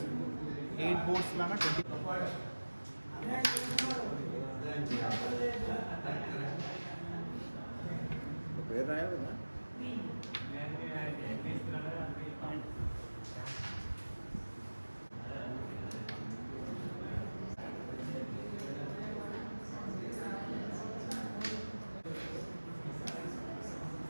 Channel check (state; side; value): inverted; both; correlation -1.00